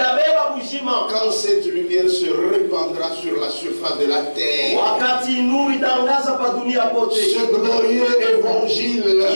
quand cette lumière se répandra sur la surface de la terre. Ce glorieux évangile.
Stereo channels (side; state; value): both; inverted; correlation -1.00